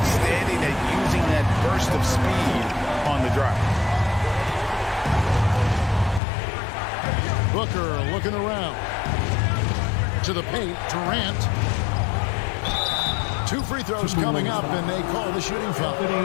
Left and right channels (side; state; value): right; drops out; at 6.2 s